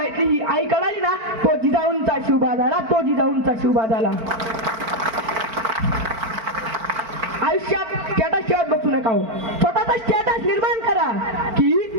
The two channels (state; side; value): late; left; 4.5 ms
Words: ही आई कळाली ना तो जिजाऊंचा शिवबा झाला, तो जिजाऊंचा शिवबा झाला. आयुष्यात स्टेटस ठेवत बसू नका हो, स्वतःचा स्टेटस निर्माण करा. की